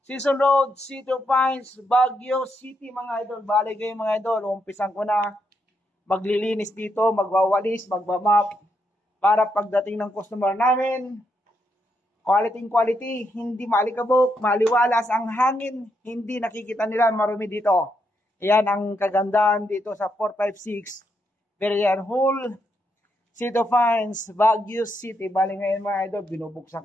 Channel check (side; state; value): both; normal; correlation 0.79